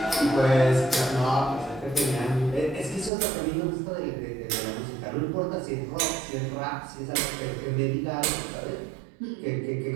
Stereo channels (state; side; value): drops out; left; at 3.1 s